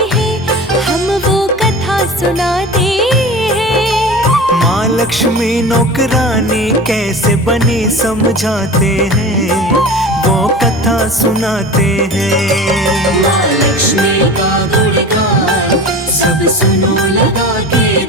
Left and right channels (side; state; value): both; normal; correlation 0.34